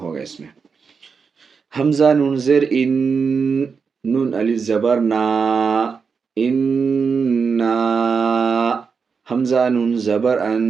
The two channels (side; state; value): left; quieter; 5.5 dB